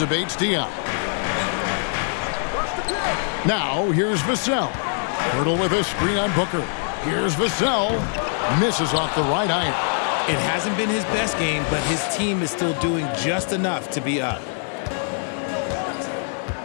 Bates-Diop. Now, here's Vassell. Pirtle with a screen on Booker. Here's Vassell. Misses off the right iron. It hasn't been his best game, but his team is still doing just enough to be up.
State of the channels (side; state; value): right; silent; 60 dB below the other